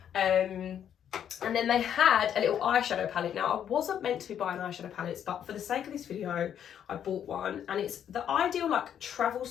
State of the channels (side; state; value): right; quieter; 9.3 dB